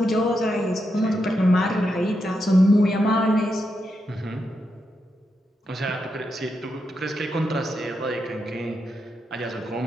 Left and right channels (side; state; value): both; normal; correlation 0.84